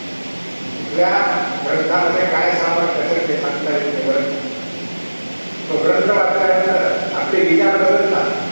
या ग्रंथामध्ये काय सामर्थ्य ते सांगता येते. बरं, तो ग्रंथ वाचल्यानंतर आपले विचार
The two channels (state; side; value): inverted; both; correlation -1.00